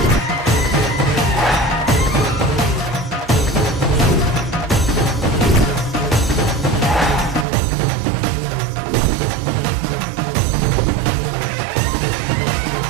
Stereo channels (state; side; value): drops out; left; at 7.5 s